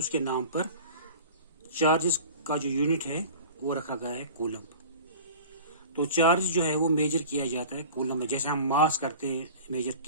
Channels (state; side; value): inverted; both; correlation -0.39